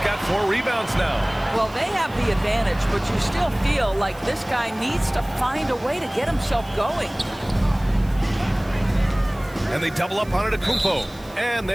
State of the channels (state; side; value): noise; right; hiss, 24 dB below the sound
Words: got 4 rebounds now. Well, they have the advantage, but you still feel like this guy needs to find a way to get himself going. And they double up Antetokounmpo. And